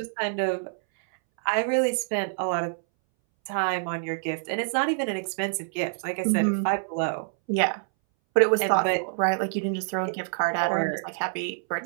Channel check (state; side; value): silent; left; 61 dB below the other